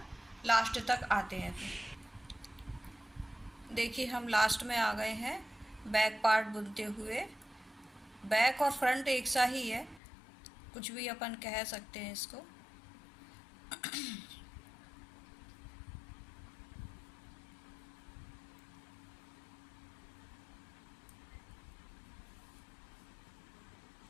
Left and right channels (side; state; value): right; drops out; at 10.0 s